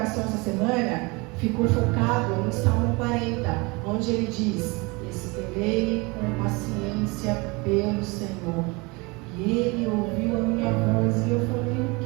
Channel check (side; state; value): left; quieter; 26.5 dB